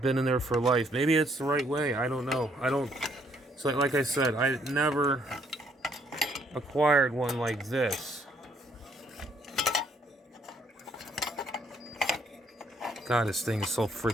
in there for life. Maybe it's the right way. I don't know. So like I said, I never acquired one like this. God, this thing is so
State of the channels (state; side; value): normal; both; correlation 0.68